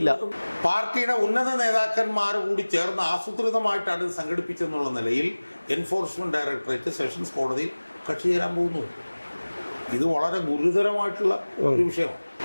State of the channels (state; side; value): inverted; both; correlation -1.00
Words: പാർട്ടിയുടെ ഉന്നത നേതാക്കന്മാർ കൂടി ചേർന്ന് ആസൂത്രിതമായിട്ടാണ് ഇത് സംഘടിപ്പിച്ചെന്നുള്ള നിലയിൽ എൻഫോഴ്സ്മെൻറ്റ് ഡയറക്ടറേറ്റ് സെഷൻസ് കോടതിയിൽ കക്ഷി ചേരാൻ പോകുന്നു. ഇത് വളരെ ഗുരുതരമായിട്ടുള്ള ഒരു വിഷയമാണ്.